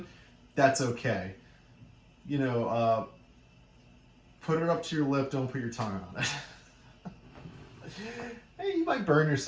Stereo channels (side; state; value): both; identical; correlation 1.00